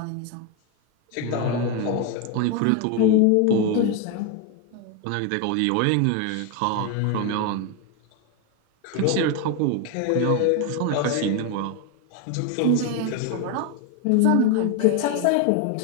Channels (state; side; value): different; both; correlation 0.02